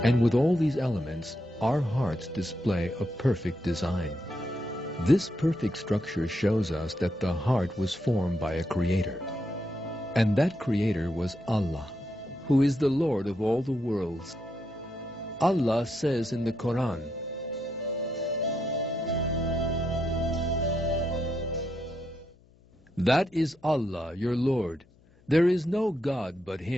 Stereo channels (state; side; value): noise; left; hum, 29 dB below the sound